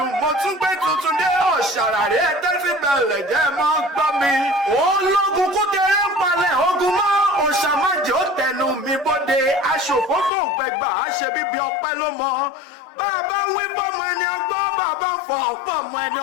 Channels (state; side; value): drops out; right; at 10.3 s